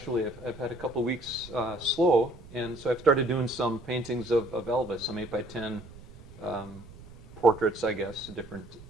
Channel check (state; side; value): noise; right; rumble, 18 dB below the sound